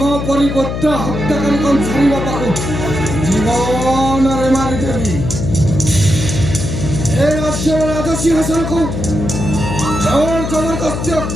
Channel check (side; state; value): left; noise; hum, 4 dB below the sound